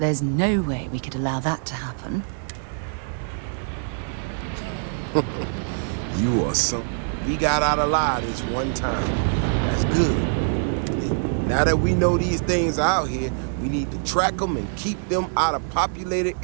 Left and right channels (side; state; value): left; silent; 63 dB below the other